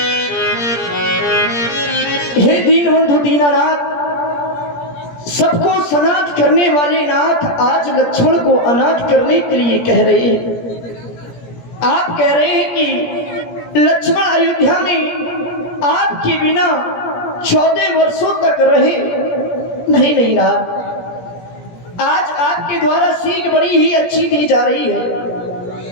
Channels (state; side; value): late; right; 17 ms